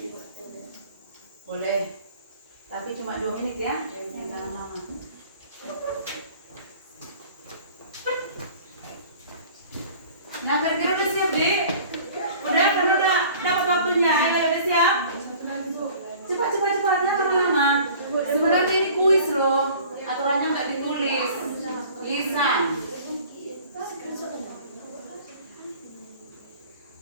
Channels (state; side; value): inverted; both; correlation -0.47